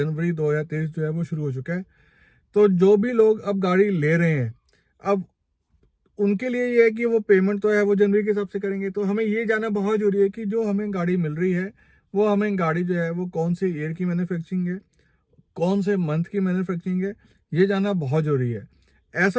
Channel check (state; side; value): identical; both; correlation 1.00